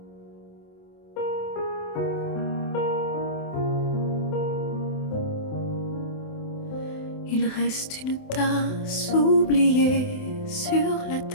Il reste une tasse oubliée sur la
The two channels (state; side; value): late; right; 27 ms